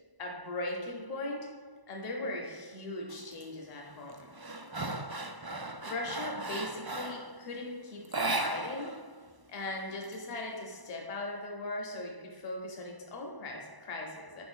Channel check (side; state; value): left; late; 1.0 ms